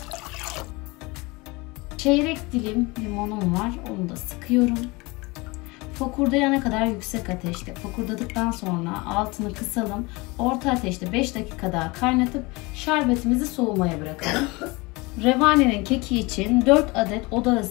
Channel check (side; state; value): right; quieter; 24.7 dB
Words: Çeyrek dilim limonum var. Onu da sıkıyorum. Fokurdayana kadar yüksek ateşte. Fokurdadıktan sonra altını kısalım. Orta ateşte 5 dakika daha kaynatıp şerbetimizi soğumaya bırakalım. Revanenin keki için 4 adet oda